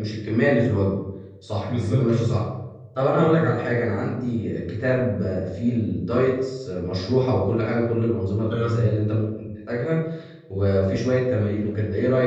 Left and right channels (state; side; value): identical; both; correlation 1.00